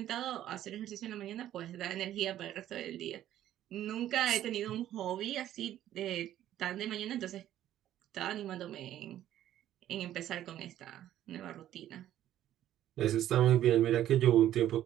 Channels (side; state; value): left; quieter; 12.3 dB